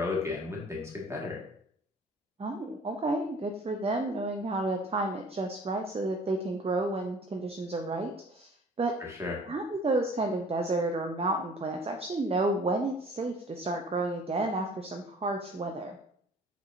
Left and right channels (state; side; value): normal; both; correlation 0.50